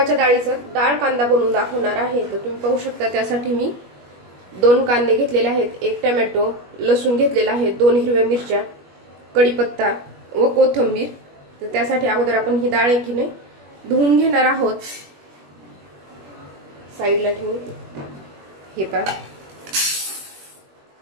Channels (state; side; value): late; left; 21 ms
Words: डाळीचं डाळ कांदा बनवून दाखवणार आहे। तर तुम्ही पाहू शकता त्यासाठी मी 2 कांदे घेतलेले आहेत, 1 टोमॅटो, लसूण घेतलेला आहे, 2 हिरव्या मिरच्या, कढीपत्ता व कोथिंबीर। तर त्यासाठी अगोदर आपण ही डाळ आहे की नाही धुवून घेणार आहोत। साइडला ठेवून हे पहा,